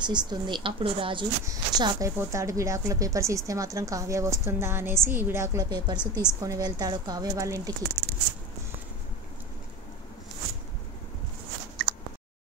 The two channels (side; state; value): both; normal; correlation 0.27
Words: ఇస్తుంది. అప్పుడు రాజు షాక్ అయిపోతాడు, విడాకుల పేపర్స్ ఇస్తే మాత్రం కావ్య వస్తుందా అనేసి విడాకుల పేపర్స్ తీసుకొని వెళ్తాడు కావ్య వాళ్ళ ఇంటికి.